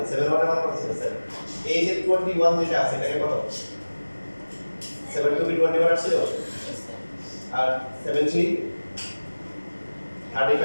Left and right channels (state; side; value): inverted; both; correlation -1.00